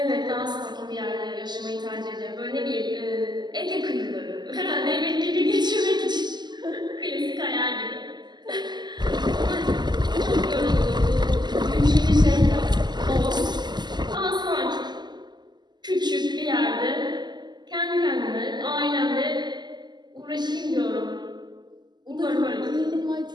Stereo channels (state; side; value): late; left; 0.21 ms